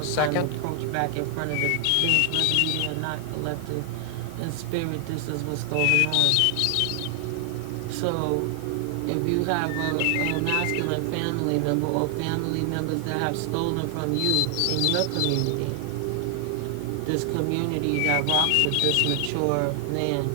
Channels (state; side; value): different; both; correlation 0.00